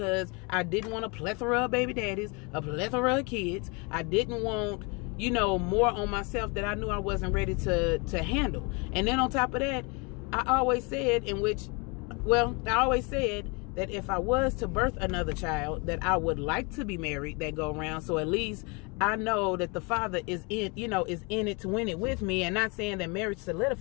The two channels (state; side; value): quieter; right; 30.5 dB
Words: I didn't want a plethora of baby daddies, a plethora of kids. I didn't want, you know, more on myself that I knew I wasn't ready to handle. And then on top of that, I always said that if I was to birth another child, that I would like to be married that go around. So at least I know that the father is in it to win it with me. And not saying that marriage